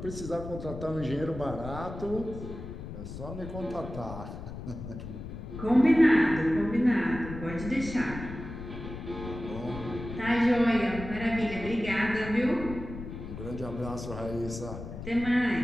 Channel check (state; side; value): noise; left; rumble, 9 dB below the sound